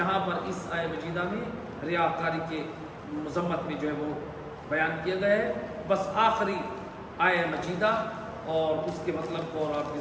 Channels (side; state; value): both; identical; correlation 1.00